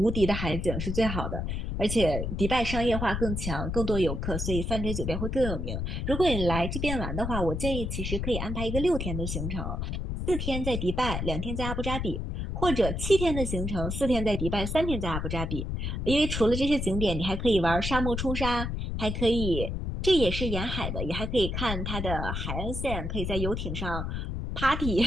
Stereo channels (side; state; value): left; noise; rumble, 3 dB below the sound